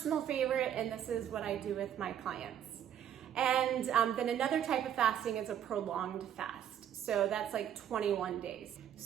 favorite, and this is what I do with my clients. And then another type of fasting is a prolonged fast. So that's like 21 days.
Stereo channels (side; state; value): left; quieter; 9.9 dB